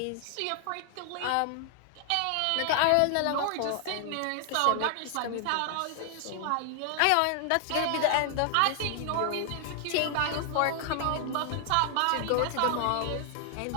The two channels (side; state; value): both; different; correlation 0.00